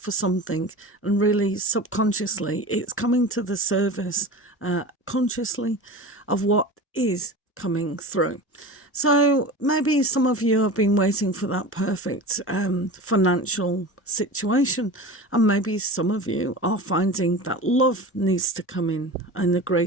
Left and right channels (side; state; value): both; normal; correlation 0.33